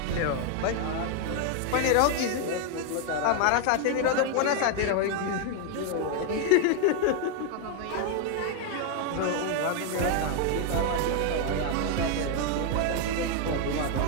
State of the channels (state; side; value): different; both; correlation 0.01